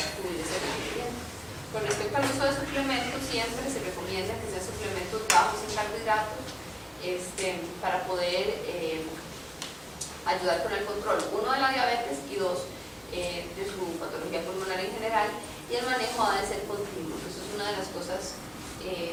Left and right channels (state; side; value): identical; both; correlation 1.00